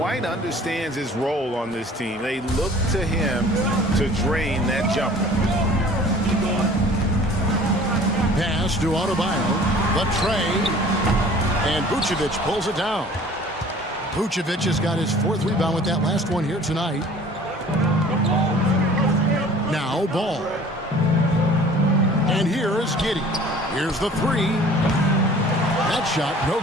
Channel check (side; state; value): both; normal; correlation 0.49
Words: understands his role on this team. They look to him to drain that jumper. Pass to Adebayo. The tray. And Vucevic pulls it down. Vucevic has got his 4th rebound with that last one here tonight. Now Ball. And here is Giddey. Here's the 3. That shot, no